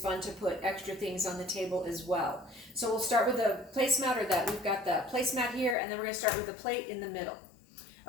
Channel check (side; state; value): right; drops out; at 5.8 s